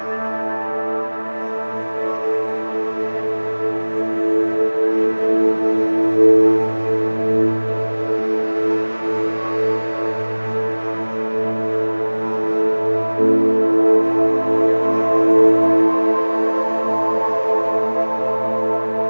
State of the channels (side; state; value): both; inverted; correlation -1.00